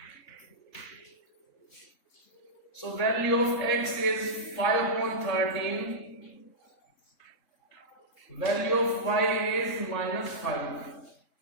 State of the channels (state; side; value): late; right; 3.6 ms